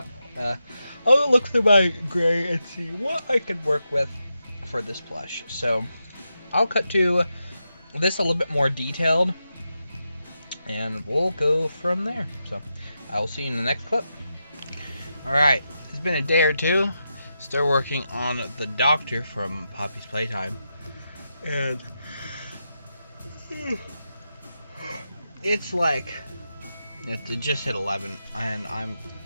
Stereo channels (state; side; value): inverted; both; correlation -0.87